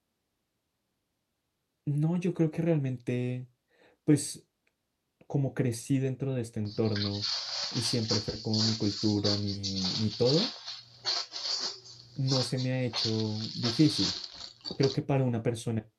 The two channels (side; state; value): both; identical; correlation 1.00